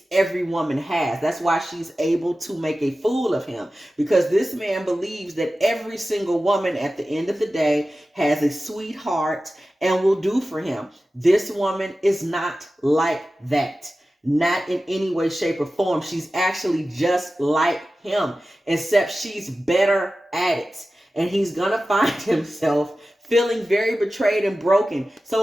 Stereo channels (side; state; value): both; normal; correlation 0.95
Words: every woman has. That's why she's able to make a fool of him, because this man believes that every single woman at the end of the day has a sweetheart and will do for him. This woman is not like that. Not in any way, shape, or form. She's actually just like him, except she's better at it. And he's going to find himself feeling very betrayed and broken.